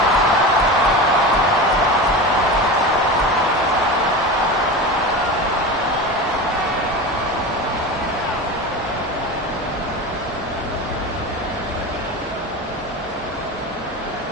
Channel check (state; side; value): normal; both; correlation 0.27